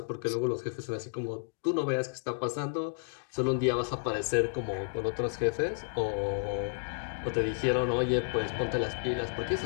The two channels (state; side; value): silent; right; digital silence